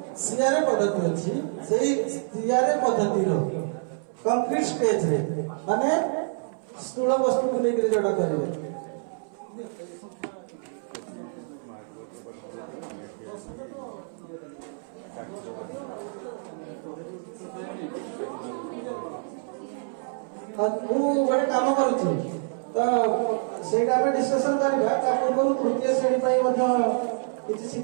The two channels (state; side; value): silent; left; 60 dB below the other